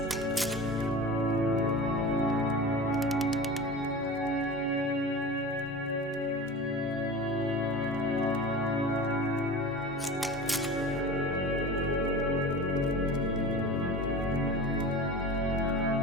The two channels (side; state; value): both; normal; correlation 0.33